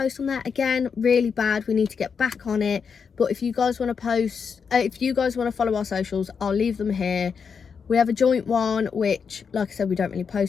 on that, again, really bad, we need to get back on it. But if you guys want to post, if you guys want to follow our socials, I'll leave them here. We have a joint one, which, like I said, we don't really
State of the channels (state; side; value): quieter; right; 6.1 dB